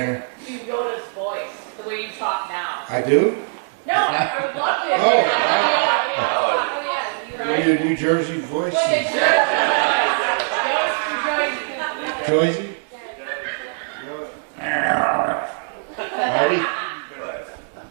You Yoda's voice, the way you talk now. I do? No, I would love to. Oh, yeah. New Jersey voice. Jersey? Marty?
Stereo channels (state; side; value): silent; left; 59 dB below the other